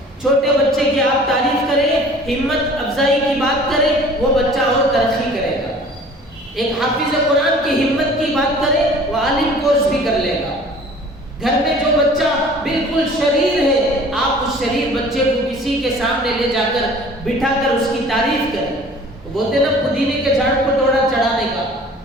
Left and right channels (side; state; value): both; normal; correlation 0.48